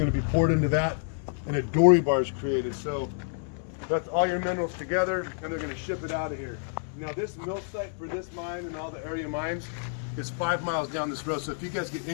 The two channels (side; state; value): right; silent; 59 dB below the other